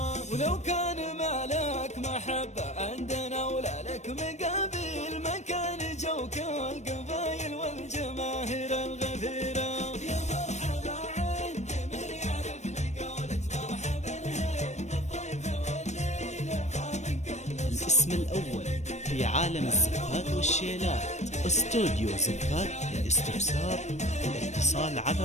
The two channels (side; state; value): right; late; 0.33 ms